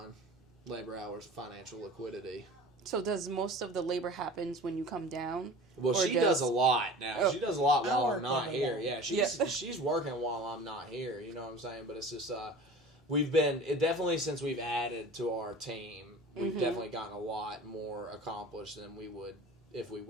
Labor hours, financial liquidity. So does most of the labor happens when you come down? Well, she does a lot now. Oh. She does a lot while I I'm not work here. every Yeah, day. she's working while I'm not here. You know what I'm saying? But it's just definitely since we've added to our team, we've definitely gotten a lot more accomplished than we would if we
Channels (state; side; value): normal; both; correlation 0.39